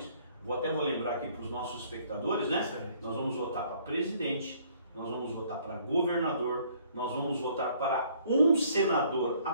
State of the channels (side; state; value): both; inverted; correlation -0.61